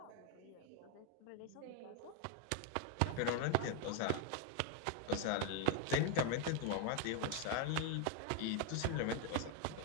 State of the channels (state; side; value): different; both; correlation 0.01